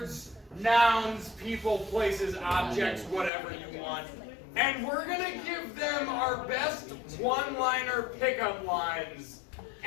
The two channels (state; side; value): drops out; right; at 3.3 s